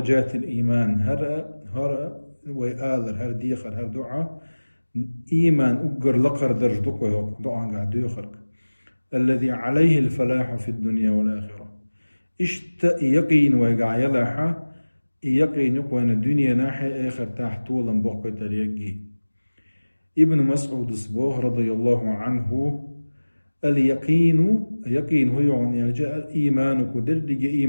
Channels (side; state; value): both; inverted; correlation -1.00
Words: الإيمان. هر ويآذر هر ديخر هر دعاء إيمان أقر لقر درجتك دعاء قاعد يخرج الذي عليه الفلاح في الدنيا والآخرة. يقين ويقع يلاحة يقين يقوان الدنيا ناحية آخر تحت طولا بقى تريقي. ابن مسعود الصبوح رضي الله عنه اليقين هو يعني جاء الإيمان كدردج